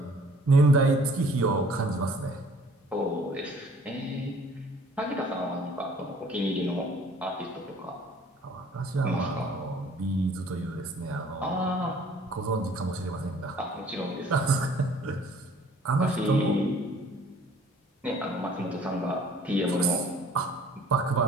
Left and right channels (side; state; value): both; normal; correlation 0.55